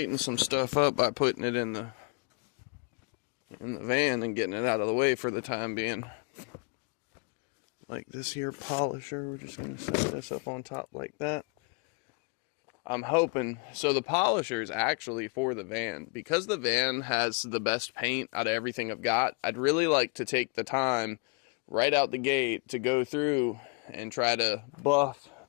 some stuff up by putting it in the van and getting it out of the way for the time being. Like this here polisher, we're just gonna set this up on top like that. I'm hoping, so the polisher is actually for the van. Because the van has the best paint out of everything I've got, I'd really like to take the time right out the gate to go through and try to buff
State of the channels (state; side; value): quieter; right; 34.9 dB